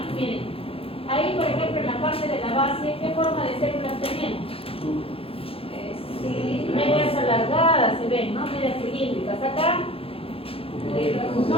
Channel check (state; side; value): late; right; 0.27 ms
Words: Miren, ahí por ejemplo en la parte de la base, ¿qué forma de células tenemos? Medias alargadas se ven, ¿no? Medias cilíndricas. Acá